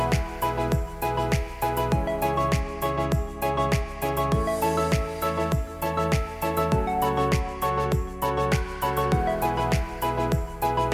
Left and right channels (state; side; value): identical; both; correlation 1.00